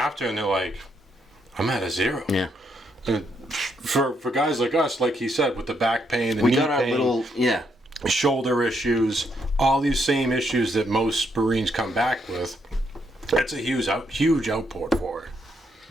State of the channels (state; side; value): normal; both; correlation 0.76